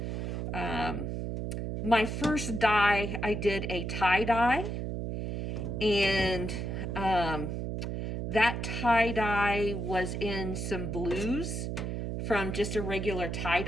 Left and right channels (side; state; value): right; noise; hum, 3 dB below the sound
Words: My first dye, I did a tie-dye, and that tie-dye was in some blues from just a regular